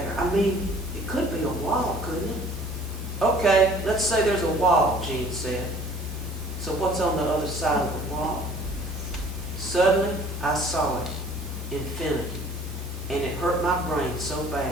I mean, it could be a wall, couldn't it? Okay, let's say there's a wall, Gene said. So what's on the other side of the wall? Suddenly, I saw it, infinity, and it hurt my brain so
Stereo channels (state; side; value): normal; both; correlation 0.52